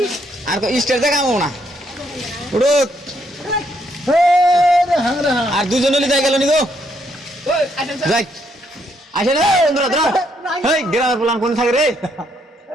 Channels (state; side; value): normal; both; correlation 0.73